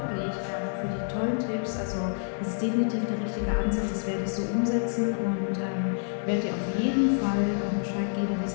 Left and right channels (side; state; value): right; silent; digital silence